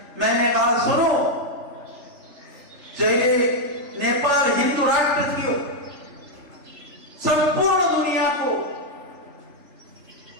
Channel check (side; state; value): left; late; 3.3 ms